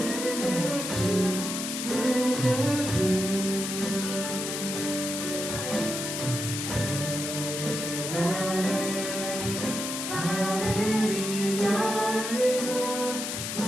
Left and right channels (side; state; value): left; noise; hiss, 4 dB below the sound